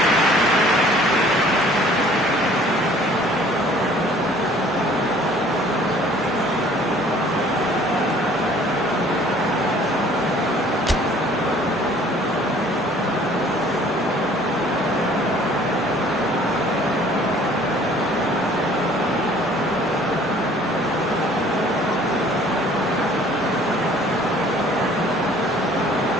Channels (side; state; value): both; normal; correlation 0.54